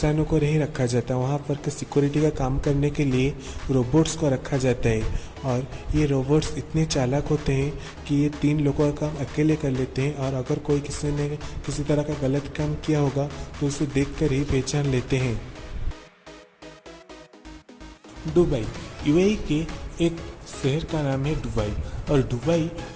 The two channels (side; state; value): both; identical; correlation 1.00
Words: को नहीं रखा जाता, वहाँ पर के सिक्योरिटी का काम करने के लिए रोबोट्स को रखा जाता है। और ये रोबोट्स इतने चालाक होते हैं कि ये 3 लोगों का काम अकेले कर लेते हैं और अगर कोई किसी ने किसी तरह का गलत काम किया होगा तो उसे देख कर ही पहचान लेते हैं। दुबई UAE के एक शहर का नाम है दुबई। और दुबई